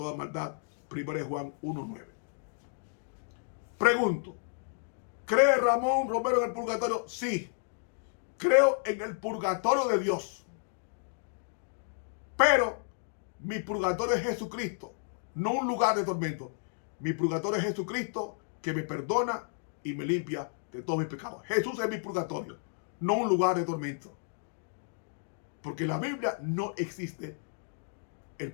maldad. 1 Juan 1:9. Pregunto: ¿cree Ramón Romero en el purgatorio? Sí, creo en el purgatorio de Dios. Pero mi purgatorio es Jesucristo, no un lugar de tormento. Mi purgatorio es Jesucristo, que me perdona y me limpia de todos mis pecados. Jesús es mi purgatorio, no un lugar de tormento. Porque en la Biblia no existe el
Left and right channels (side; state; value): right; silent; 56 dB below the other